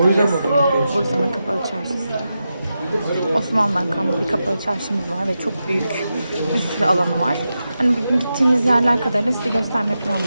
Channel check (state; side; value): inverted; both; correlation -0.90